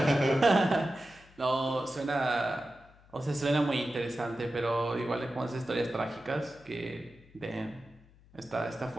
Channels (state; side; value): noise; left; hum, 26 dB below the sound